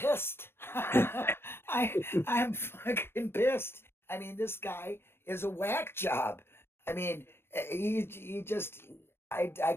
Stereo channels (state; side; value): late; right; 0.12 ms